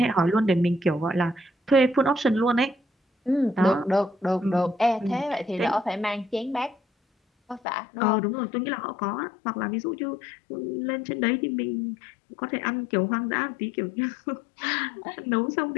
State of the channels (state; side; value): drops out; right; at 7.6 s